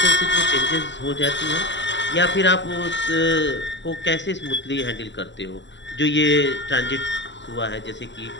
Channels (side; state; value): right; late; 0.52 ms